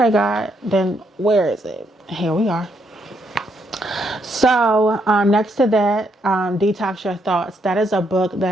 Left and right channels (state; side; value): normal; both; correlation 0.76